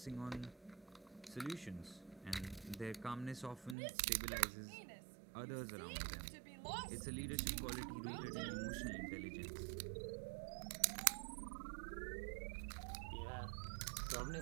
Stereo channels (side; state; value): left; drops out; at 3.8 s